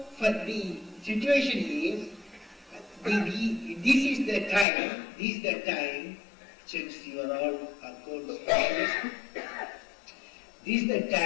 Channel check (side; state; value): right; drops out; at 4.7 s